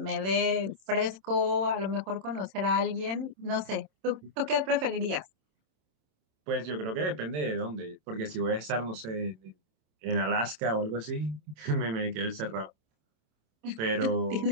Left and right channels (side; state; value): left; late; 27 ms